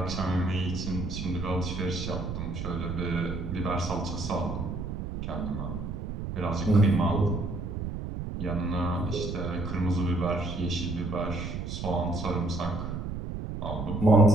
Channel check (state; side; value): noise; right; rumble, 5 dB below the sound